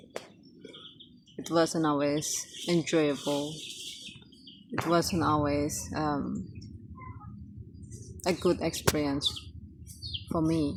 It wasn't always enjoyable. It wasn't always a good experience for me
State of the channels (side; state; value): both; identical; correlation 1.00